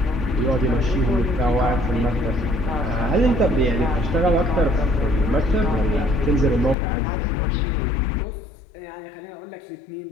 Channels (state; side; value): drops out; right; at 6.8 s